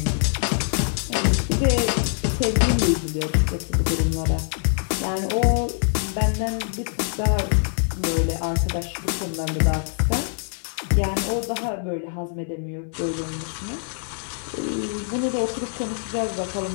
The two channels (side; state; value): right; silent; digital silence